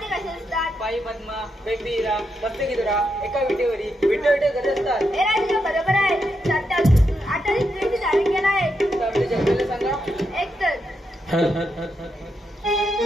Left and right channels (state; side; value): normal; both; correlation 0.83